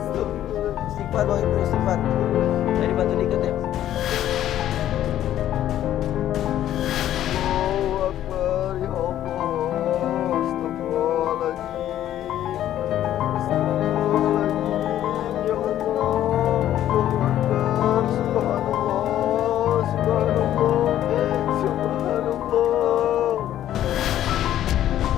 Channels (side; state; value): right; quieter; 12.0 dB